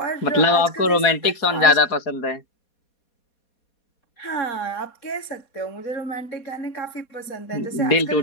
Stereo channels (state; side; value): late; right; 4.2 ms